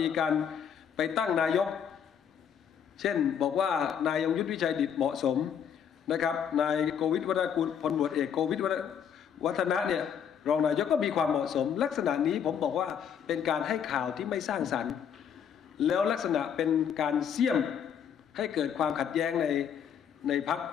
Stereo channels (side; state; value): right; quieter; 8.1 dB